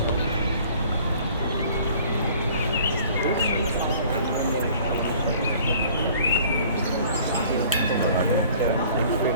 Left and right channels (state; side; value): inverted; both; correlation -0.52